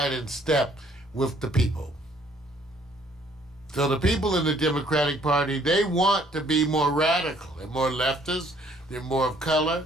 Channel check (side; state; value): both; normal; correlation 0.62